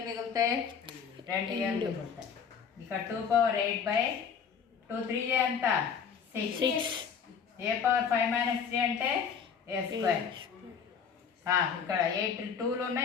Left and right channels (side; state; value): right; quieter; 6.8 dB